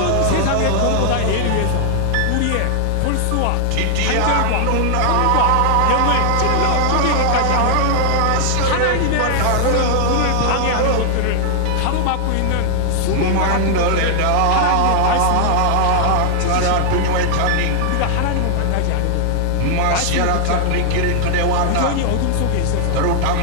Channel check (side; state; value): both; different; correlation 0.00